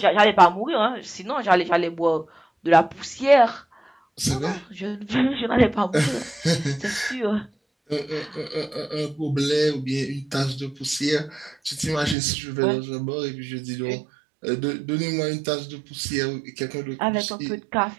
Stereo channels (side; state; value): left; drops out; at 12.2 s